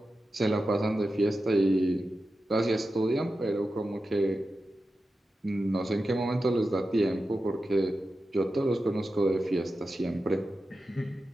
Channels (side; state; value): both; normal; correlation 0.92